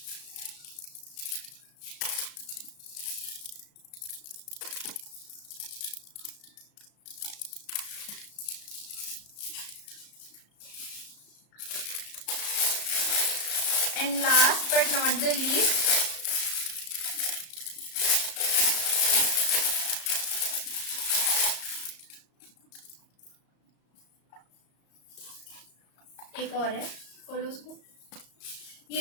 And last but not the least, एक और है, खोलो उसको।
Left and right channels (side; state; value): right; late; 34 ms